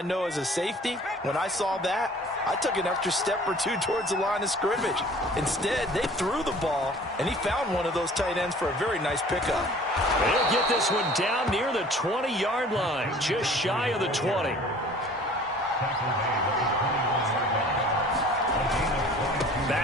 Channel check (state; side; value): normal; both; correlation 0.49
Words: know as a safety, when I saw that, I took an extra step or two towards the line of scrimmage. Instead, they threw the ball, and he found one of those tight ends for a very nice pickup. They'll get this one down near the 20-yard line, just shy of the 20.